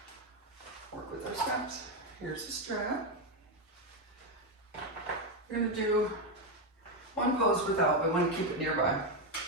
work with our straps. Here's the strap. We're going to do one pose without, but I want to keep it nearby.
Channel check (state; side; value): normal; both; correlation 0.07